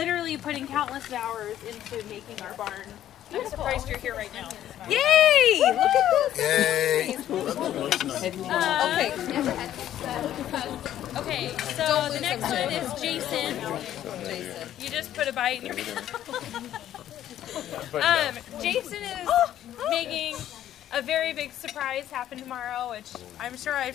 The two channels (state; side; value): quieter; right; 11.8 dB